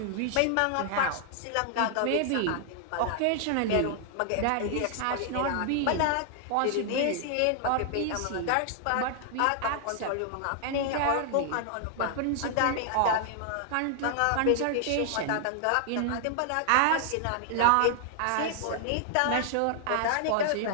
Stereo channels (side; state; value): both; different; correlation 0.00